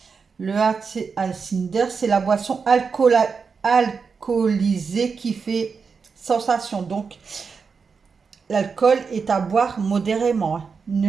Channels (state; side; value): quieter; left; 5.4 dB